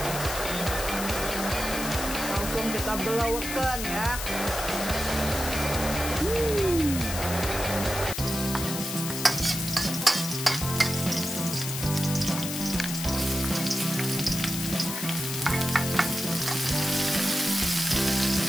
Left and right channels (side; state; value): left; noise; hiss, 5 dB below the sound